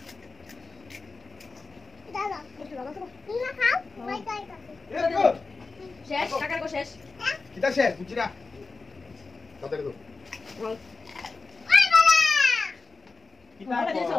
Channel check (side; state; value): right; quieter; 4.1 dB